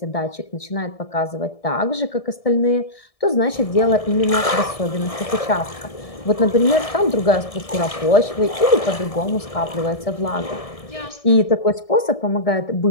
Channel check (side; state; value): right; late; 1.7 ms